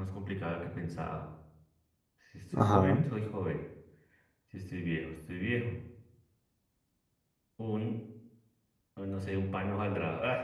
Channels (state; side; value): identical; both; correlation 1.00